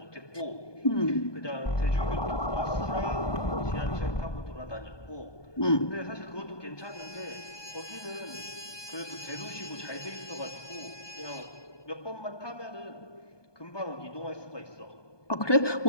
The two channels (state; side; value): late; right; 1.2 ms